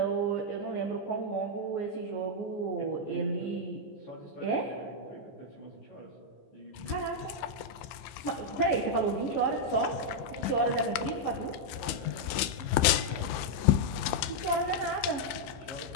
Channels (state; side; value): late; right; 15 ms